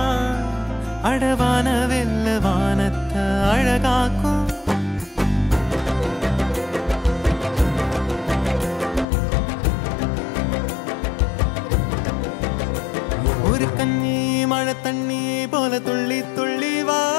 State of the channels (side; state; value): right; drops out; at 9.1 s